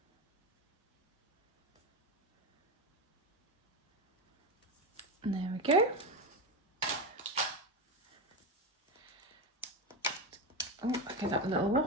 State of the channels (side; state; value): both; normal; correlation 0.15